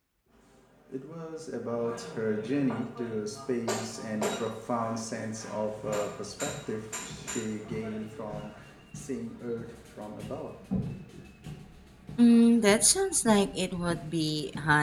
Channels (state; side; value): identical; both; correlation 1.00